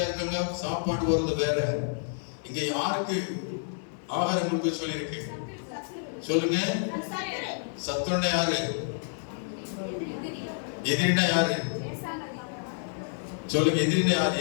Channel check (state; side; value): silent; right; digital silence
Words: இருக்காங்க, சாப்பாடு வருது வேற. இங்க யாருக்கு ஆகாரம் கொடுக்க சொல்லியிருக்கு? சொல்லுங்க. சத்துருன்னா யாரு? எதிரினா யாரு? சொல்லுங்க. எதிரினா யாரு?